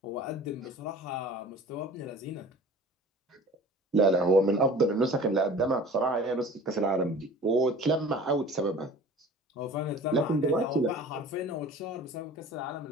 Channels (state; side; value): normal; both; correlation 0.43